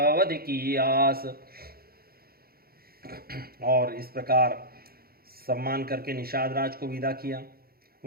की आस। और इस प्रकार सम्मान करके निषाद राज को विदा किया।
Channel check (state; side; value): late; left; 0.44 ms